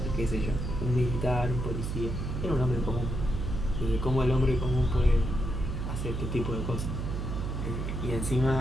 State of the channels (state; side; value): noise; right; hum, 3 dB below the sound